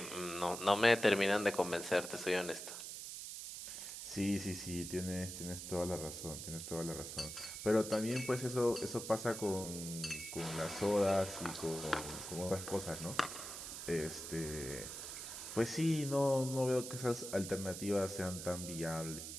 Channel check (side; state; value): right; noise; hiss, 8 dB below the sound